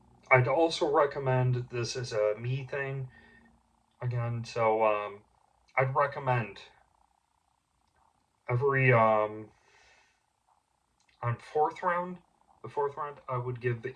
also recommend, this is a me thing again, so I'd recommend every on the fourth round, I would give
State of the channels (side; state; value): both; identical; correlation 1.00